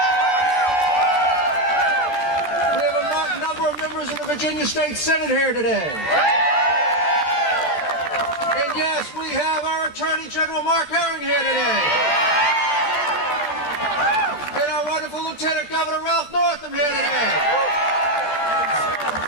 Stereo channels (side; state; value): right; late; 14 ms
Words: We have a number of members of the Virginia State Senate here today. And yes, we have our Attorney General Mark Herring here today. And our wonderful Lieutenant Governor Ralph Northam here today.